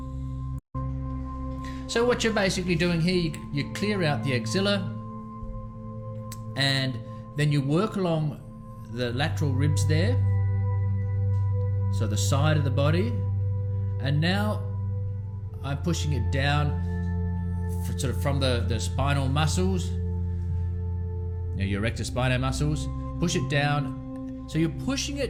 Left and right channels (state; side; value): identical; both; correlation 1.00